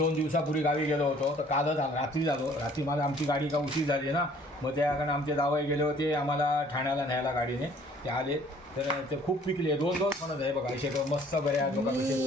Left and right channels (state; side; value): normal; both; correlation 0.57